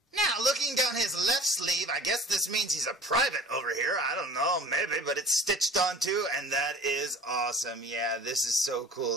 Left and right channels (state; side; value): normal; both; correlation 0.44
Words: Now, looking down his left sleeve, I guess this means he's a private over here. I don't know, maybe, but it's stitched on too, and that is awesome. Yeah, this is so